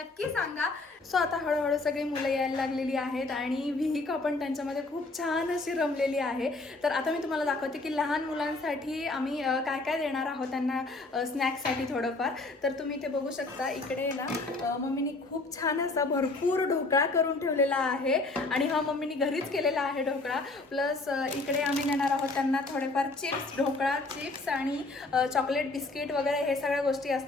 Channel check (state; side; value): quieter; right; 3.3 dB